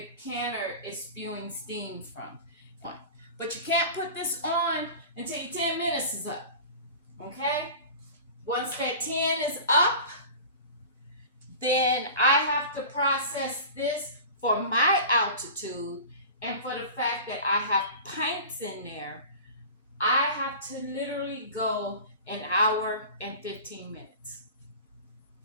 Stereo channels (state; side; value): inverted; both; correlation -0.36